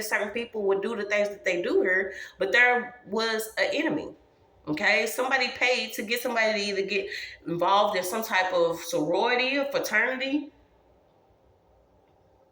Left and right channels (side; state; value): both; identical; correlation 1.00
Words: certain people would do the things that they do here, but there was an enemy. Okay, somebody paid to get somebody to either get involved in some type of sorority or fraternity.